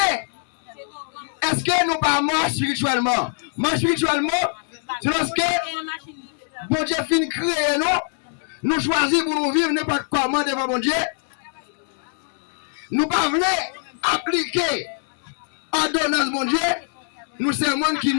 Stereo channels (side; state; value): right; silent; digital silence